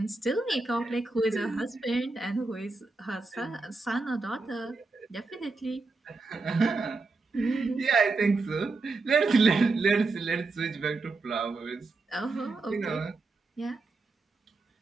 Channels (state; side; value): quieter; left; 3.7 dB